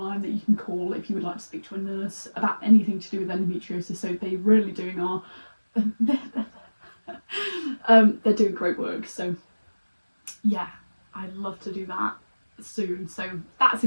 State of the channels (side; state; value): both; inverted; correlation -1.00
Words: that you can call if you would like to speak to a nurse about anything to do with endometriosis. So they really doing they're doing great work. So yeah, I'd love to do that soon. So that's a